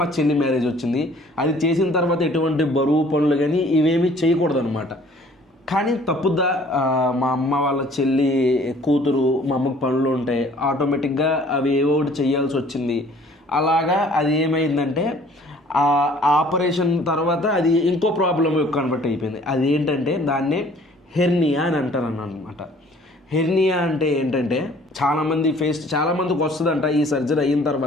మా చెల్లి మ్యారేజ్ వచ్చింది. అది చేసిన తర్వాత ఎటువంటి బరువు పనులు కానీ ఇవేమీ చేయకూడదు అనమాట. కానీ తప్పుద్దా, మా అమ్మ వాళ్ళ చెల్లి కూతురు, మా అమ్మకి పనులు ఉంటాయి, ఆటోమేటిక్గా అవి ఏవో ఒకటి చేయాల్సి వచ్చింది. అలాగా అది ఏమైందంటే ఆ ఆపరేషన్ తర్వాత అది ఇంకో ప్రాబ్లం కన్వర్ట్ అయిపోయింది. అది ఏంటంటే దాన్నే హెర్నియా అని అంటారు అన్నమాట. హెర్నియా అంటే ఏంటంటే చాలామందికి వస్తుందంట ఈ సర్జరీ అయిన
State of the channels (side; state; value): both; normal; correlation 0.55